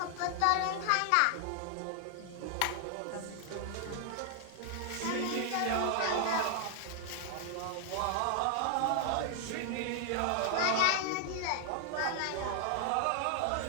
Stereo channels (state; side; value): different; both; correlation 0.00